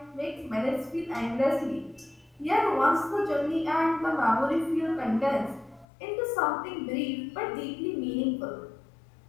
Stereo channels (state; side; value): drops out; right; at 5.9 s